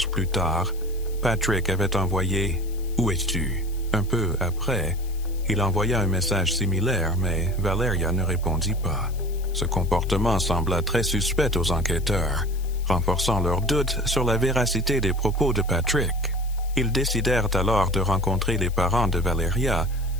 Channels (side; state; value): left; noise; hiss, 21 dB below the sound